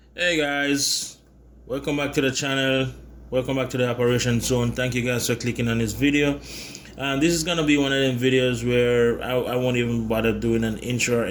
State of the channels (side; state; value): both; identical; correlation 1.00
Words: Hey guys, welcome back to the channel. Welcome back to the operation zone. Thank you guys for clicking on this video. This is gonna be one of them videos where I won't even bother doing an intro or